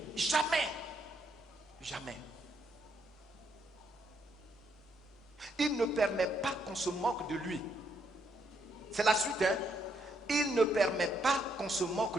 jamais. Jamais. Il ne permet pas qu'on se moque de lui. C'est la suite, hein? Il ne permet pas qu'on se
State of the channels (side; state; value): both; normal; correlation 0.75